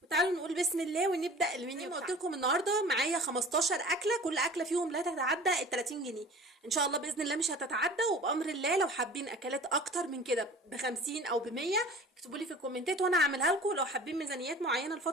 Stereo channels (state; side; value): normal; both; correlation 0.43